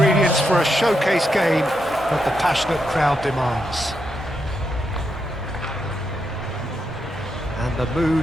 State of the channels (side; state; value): both; normal; correlation 0.83